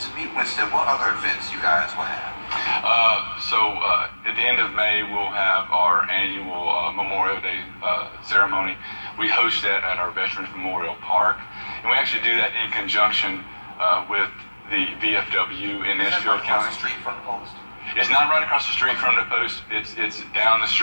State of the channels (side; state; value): both; inverted; correlation -1.00